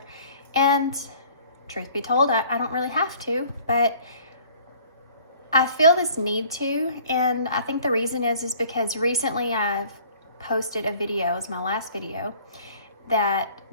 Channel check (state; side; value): inverted; both; correlation -0.52